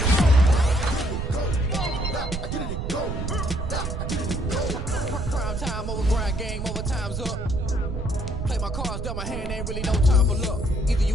Now I get it to go. Now I get it to go. Prime time over grind game, overtime's up. Play my cards, dealt my hand, ain't really no time for luck. Either you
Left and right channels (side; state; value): right; noise; rumble, 4 dB below the sound